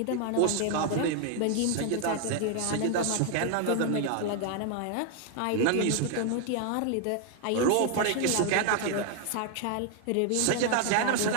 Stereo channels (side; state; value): both; different; correlation 0.00